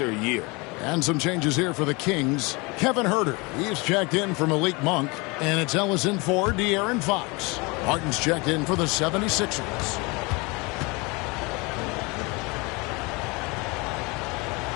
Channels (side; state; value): right; quieter; 26.8 dB